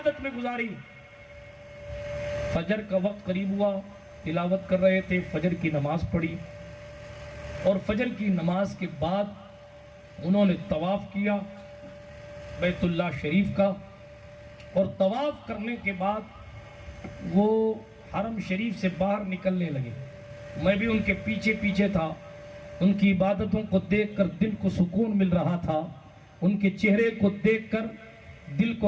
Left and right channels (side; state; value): both; identical; correlation 1.00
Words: میں گزاری. فجر کا وقت قریب ہوا، تلاوت کر رہے تھے، فجر کی نماز پڑھی اور فجر کی نماز کے بعد انہوں نے طواف کیا بیت اللہ شریف کا. اور طواف کرنے کے بعد وہ حرم شریف سے باہر نکلنے لگے. میں بھی ان کے پیچھے پیچھے تھا. ان کی عبادتوں کو دیکھ کر دل کو سکون مل رہا تھا، ان کے چہرے کو دیکھ کر دل